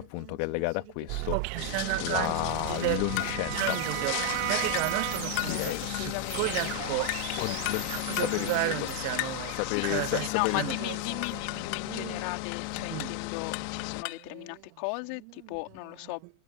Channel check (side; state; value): both; different; correlation 0.00